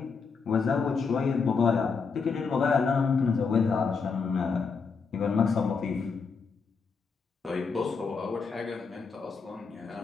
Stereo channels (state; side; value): quieter; right; 5.2 dB